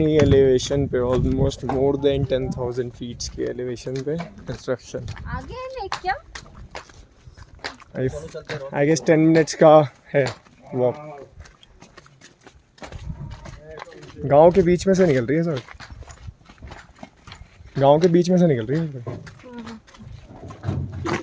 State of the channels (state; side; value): identical; both; correlation 1.00